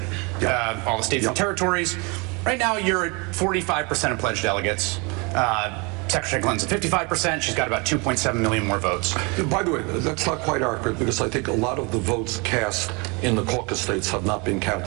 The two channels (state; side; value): quieter; left; 29.6 dB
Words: Yeah. All the states and territories. Right now, you're at 45% of pledged delegates. Secretary Clinton's at 55%. She's got about 2.7 million more votes. By the way, that's not quite accurate because I think a lot of the votes cast in the caucus states have not been